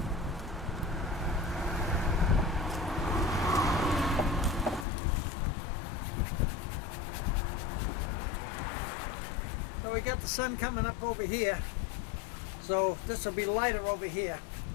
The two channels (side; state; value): right; drops out; at 4.9 s